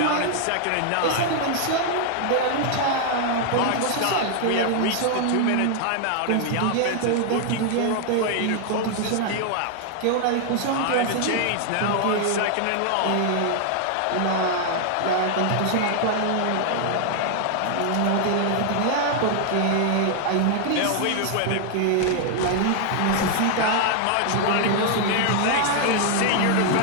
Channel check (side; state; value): both; different; correlation 0.00